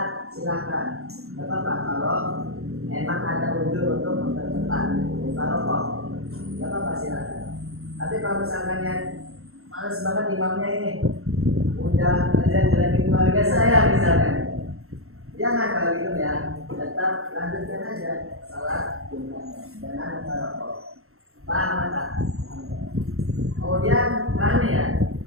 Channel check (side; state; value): left; late; 0.62 ms